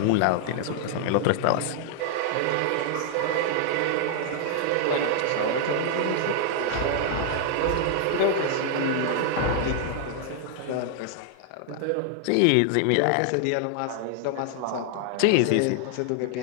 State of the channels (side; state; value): both; different; correlation 0.00